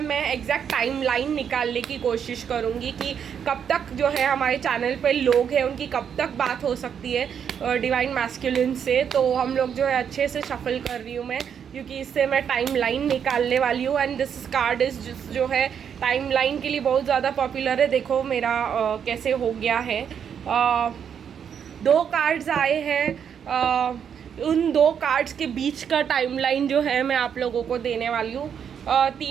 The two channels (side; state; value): left; quieter; 7.9 dB